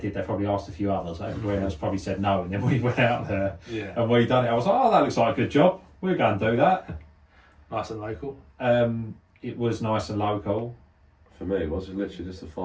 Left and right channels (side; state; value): both; identical; correlation 1.00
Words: They probably asked a few others. Everybody else probably said no, and then we went out there Yeah, and we done it. I was like, oh, that looks like a good job. We're going to do that. nice and local. It was nice and local. For me, it was literally just a